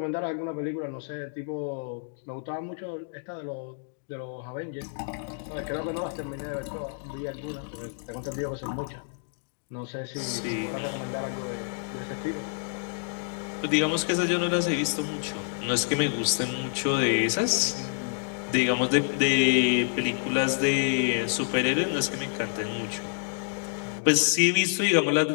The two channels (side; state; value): right; silent; digital silence